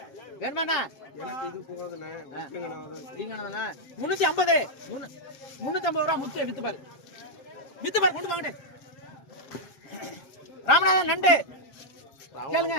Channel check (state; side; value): late; right; 7.1 ms